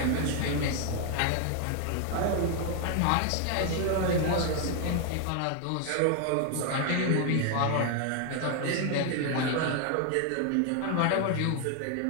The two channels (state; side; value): different; both; correlation 0.00